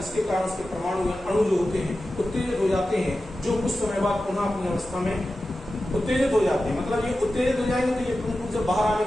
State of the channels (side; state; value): both; normal; correlation 0.93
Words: कारण उसके परमाणु या अणु जो होते हैं उत्तेजित हो जाते हैं, जो कुछ समय बाद पुनः अपनी अवस्था में उत्तेजित हो जाते हैं। मतलब ये उत्तेजित हो जाएंगे तो ये प्रमुख रूप से बाहर आने